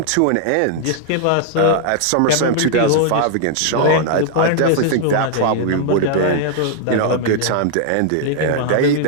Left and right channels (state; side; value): different; both; correlation -0.01